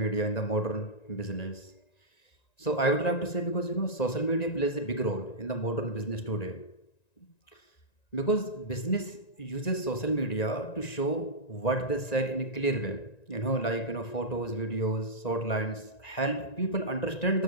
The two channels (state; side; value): late; right; 1.9 ms